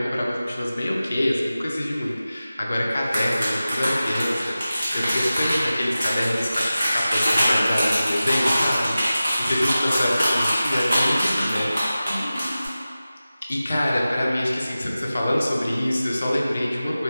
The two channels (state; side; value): inverted; both; correlation -0.95